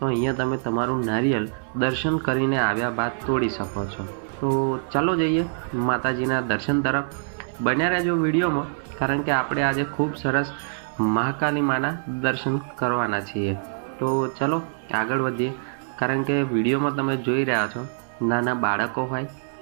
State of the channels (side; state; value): left; silent; 60 dB below the other